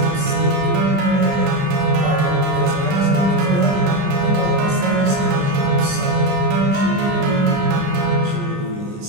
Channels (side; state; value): left; late; 20 ms